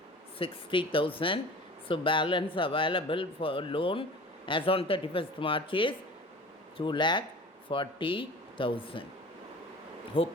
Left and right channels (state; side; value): normal; both; correlation 0.40